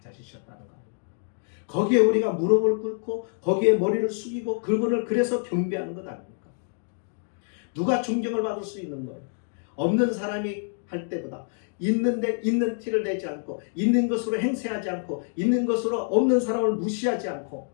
거예요. 거기에 우리가 무릎을 꿇고 거기에 머리를 숙이고 그분을 그래서 경배하는 것 아닙니까? 누가 존경을 받을 수 있는 거예요? 없는 사람이 할 때보다 있는데 있는 티를 내지 않고 있는 것으로 행세하지 않고 있는 것으로 없는 사람을 무시하지 않고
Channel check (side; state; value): right; silent; 59 dB below the other